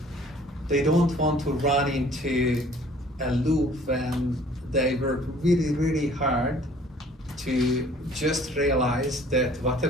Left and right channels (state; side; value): normal; both; correlation 0.54